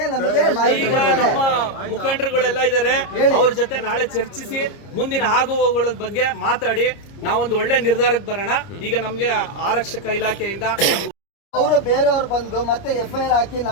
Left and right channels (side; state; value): right; late; 30 ms